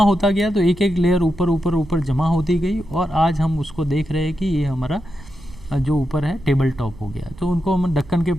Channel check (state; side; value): noise; right; rumble, 18 dB below the sound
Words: तो एक एक लेयर ऊपर जमा होती गई, और आज हम उसको देख रहे हैं कि ये हमारा जो ऊपर है टेबल टॉप हो गया। तो उनको हम दक्कन के